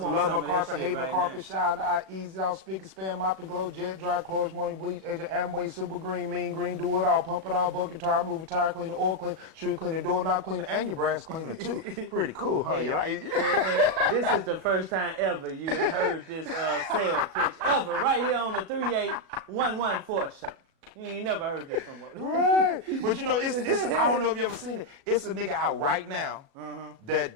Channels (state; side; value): late; left; 37 ms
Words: My Carpet, Hate My Carpet, Shower Eye, Easy Out, Speak and Span, Mop and Glow, Jet Dry, Clothes, Morning Bleach, Agent Amway, Super Green, Mean Green, Do It All, Pump It All, Bucket Tire, Move It, Tire Cleaner, Oil Cleaner, Shoe Cleaner, Doorknob Cleaner, and your brass cleaner too. Pretty cool, huh? You like it? This is the first time ever you heard this sales pitch ever right here on the 38114 show. You ain't never heard this from us. Right. But you know, it's I don't know if you ever seen it. It's a nigga out right now that